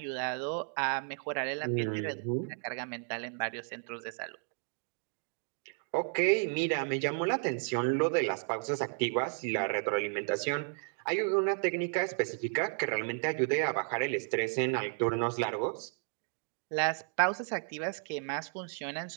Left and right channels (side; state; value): left; silent; 56 dB below the other